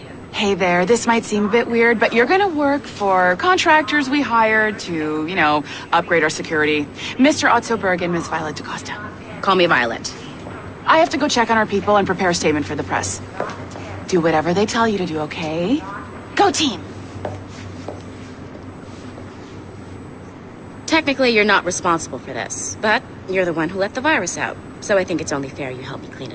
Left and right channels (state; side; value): identical; both; correlation 1.00